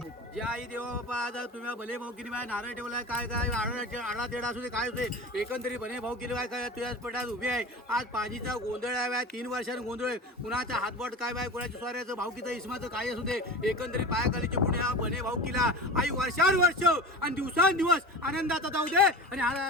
जे आई देवा बापा आज तुम्ही भले भाऊ किनी बाय नारळ ठेवलाय काय काय आडा तेडा असू दे काय होते एकंदरीत भले भाऊ किनी बाय काय तुझ्याच पटात उभी आहे. आज पाजीचा गोंधळ आहे बाय 3 वर्षांनी गोंधळ आहे. कुणाचा हातबोट काय बाय कुणाच्या स्वाऱ्याचं भाऊकीचं इस्माचं काय असू दे एकंदरीत पायाखालीचे पुणे हा भले भाऊ किला आई वर्षानुवर्ष आणि दिवसांदिवस आनंदाचा जाऊ दे आणि हर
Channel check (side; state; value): both; normal; correlation 0.32